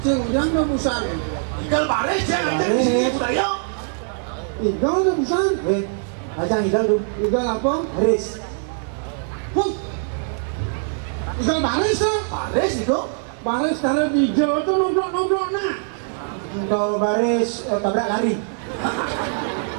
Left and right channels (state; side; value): silent; left; 63 dB below the other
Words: Cing ujang udah busan. Tinggal baris ya aja di sini budaya. Igal udah busan. Ajang igal dulu. Igal apa? Haris. Wah. Igal baris ya. Baris itu. Baris taruh di hijau itu nomplok nak. Kalau baris tabrak lari.